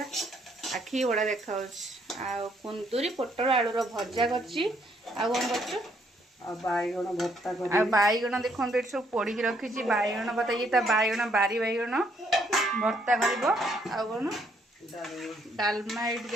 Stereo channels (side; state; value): both; normal; correlation 0.70